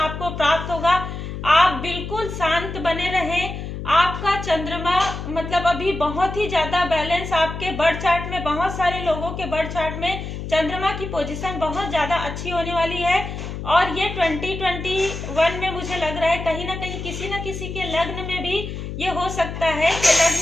प्राप्त होगा। आप बिल्कुल शांत बने रहें। आपका चंद्रमा मतलब अभी बहुत ही ज्यादा बैलेंस, आपके बर्थ चार्ट में, बहुत सारे लोगों के बर्थ चार्ट में चंद्रमा की पोजीशन बहुत ज्यादा अच्छी होने वाली है। और ये 2021 में मुझे लग रहा है कहीं ना कहीं किसी न किसी के लग्न में भी ये हो सकता है कि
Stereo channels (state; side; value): noise; left; hum, 7 dB below the sound